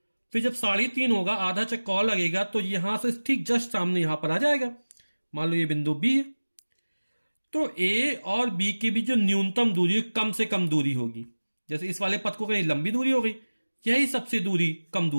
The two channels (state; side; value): inverted; both; correlation -1.00